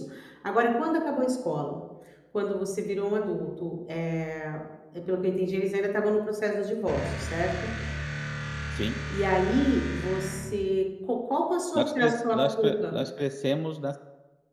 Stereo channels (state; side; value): identical; both; correlation 1.00